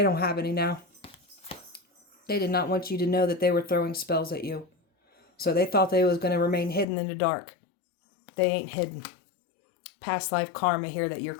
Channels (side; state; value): right; drops out; at 6.9 s